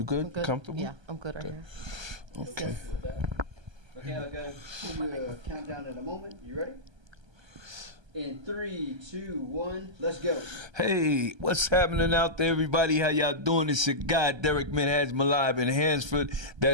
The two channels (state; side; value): late; left; 1.3 ms